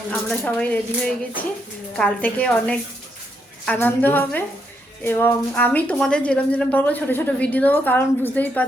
আমরা সবাই রেডি হয়ে গেছি। কাল থেকে অনেক আনন্দ হবে এবং আমি তোমাদের যেরম যেরম পারবো ছোটো ছোটো ভিডিও দেবো, কারণ বুঝতেই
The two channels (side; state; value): both; normal; correlation 0.77